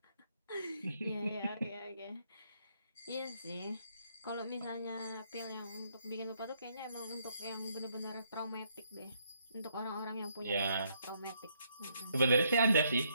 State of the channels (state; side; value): inverted; both; correlation -0.72